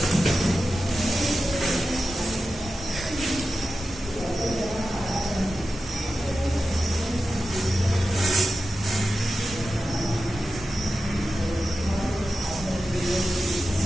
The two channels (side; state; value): both; normal; correlation 0.92